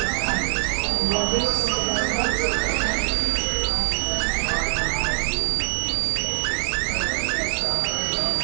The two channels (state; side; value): silent; left; digital silence